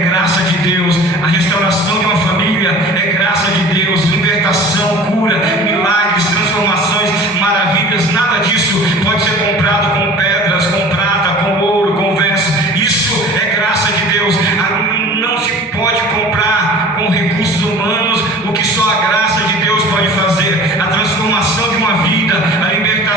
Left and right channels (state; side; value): normal; both; correlation 0.42